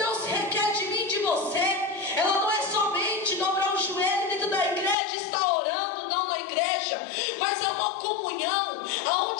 requer de mim e de você, ela não é somente dobrar o joelho dentro da igreja e estar orando, não na igreja, mas é uma comunhão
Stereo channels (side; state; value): right; drops out; at 5.0 s